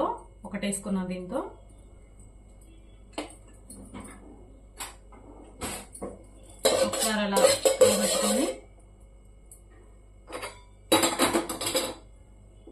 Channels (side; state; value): both; identical; correlation 1.00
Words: ఒకటి వేసుకున్నాను. దీంతో ఒకసారి అలా పెట్టుకొని